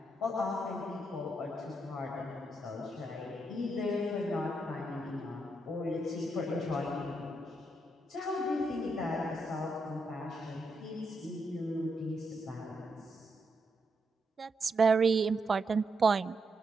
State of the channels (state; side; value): normal; both; correlation 0.81